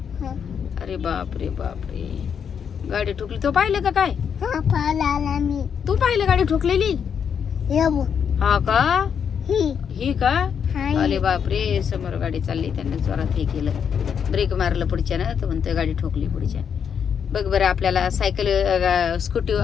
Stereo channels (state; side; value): quieter; right; 7.4 dB